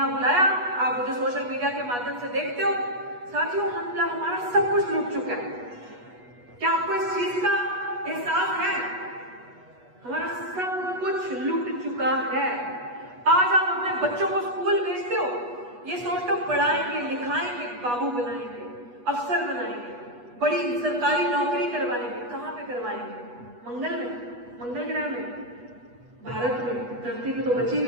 बुलाया, आप मुझे सोशल मीडिया के माध्यम से देखते हो। साथियों, हमारा सब कुछ लूट चुका है। क्या आपको इस चीज का एहसास है? हमारा सब कुछ लूट चुका है। आज आप अपने बच्चों को स्कूल भेजते हो, ये सोचते हो पढ़ाएंगे, लिखाएंगे, बाबू बनाएंगे, अफसर बनाएंगे, बड़ी सरकारी नौकरी करवाएंगे। कहाँ पे करवाएंगे? मंगल में, मंगल ग्रह में, भारत में, धरती में तो बची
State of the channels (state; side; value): late; left; 8.2 ms